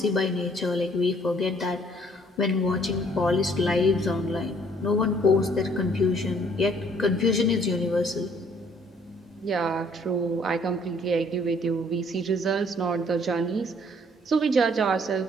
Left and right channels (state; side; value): normal; both; correlation 0.61